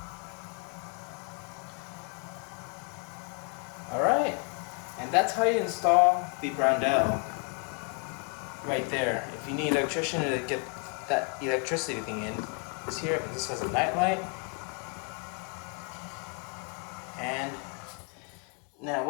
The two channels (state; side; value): quieter; right; 36.6 dB